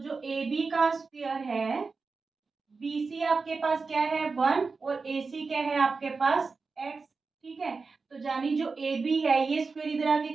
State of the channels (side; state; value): left; quieter; 4.4 dB